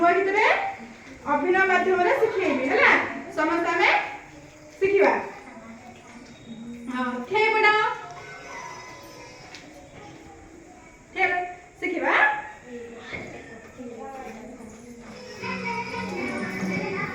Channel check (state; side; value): identical; both; correlation 1.00